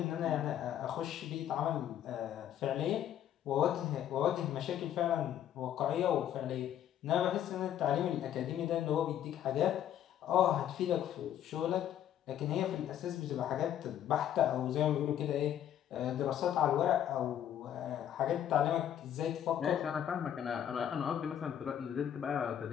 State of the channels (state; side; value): quieter; right; 10.6 dB